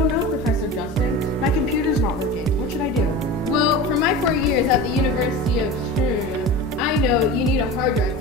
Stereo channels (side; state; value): both; normal; correlation 0.32